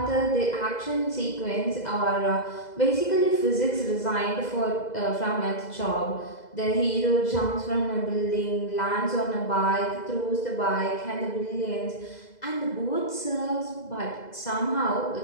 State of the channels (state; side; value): late; right; 2.0 ms